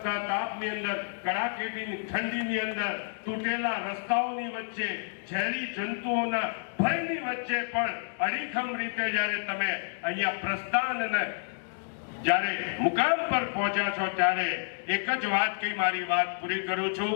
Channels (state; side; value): silent; right; digital silence